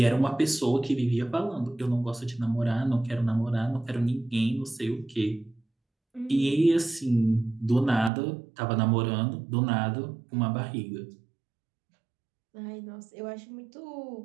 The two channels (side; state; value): left; drops out; at 8.1 s